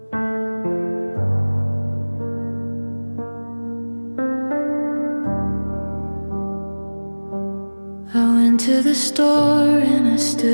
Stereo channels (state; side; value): inverted; both; correlation -1.00